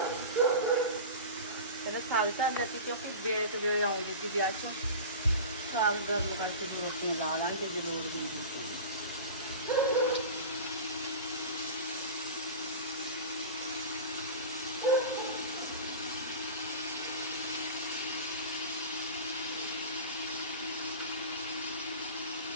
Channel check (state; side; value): inverted; both; correlation -0.32